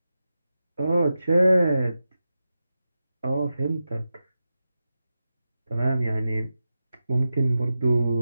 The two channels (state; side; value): inverted; both; correlation -0.90